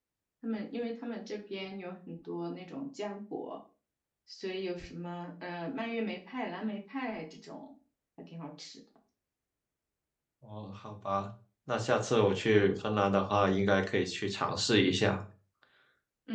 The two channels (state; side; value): identical; both; correlation 1.00